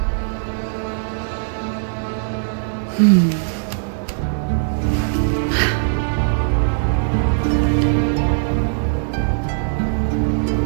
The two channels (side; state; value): left; silent; 66 dB below the other